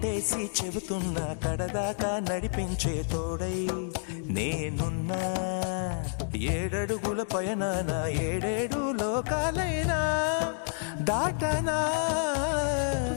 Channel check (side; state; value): right; silent; digital silence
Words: చేసి చెబుతున్నా కడదాకా నడిపించే తోడై నేనున్నా. 7 అడుగుల పయనాన 7 లోకాలైనా దాటనా.